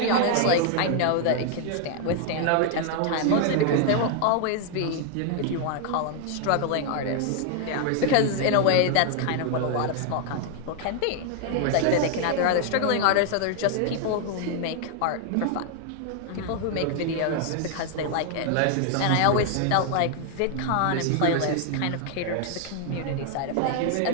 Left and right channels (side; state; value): both; different; correlation 0.00